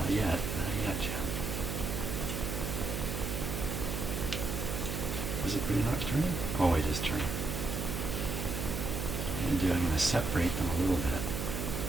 yet. Not yet, Jim. Is it really not turning? Oh, it is turning. I'm going to separate them a little bit.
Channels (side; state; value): right; noise; hum, 3 dB below the sound